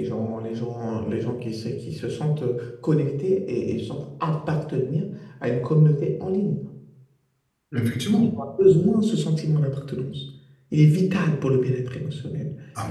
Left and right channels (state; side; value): identical; both; correlation 1.00